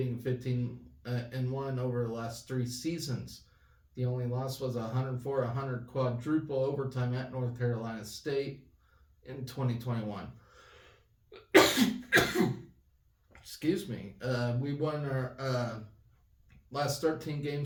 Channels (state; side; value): identical; both; correlation 1.00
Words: 15-1 over the last 3 seasons. The only loss was a 104-100 quadruple overtime at North Carolina State in 2021. Excuse me. We won our last 13